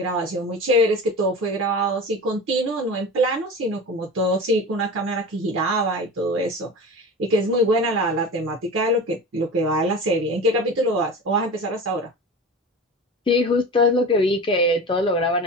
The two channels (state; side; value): normal; both; correlation 0.31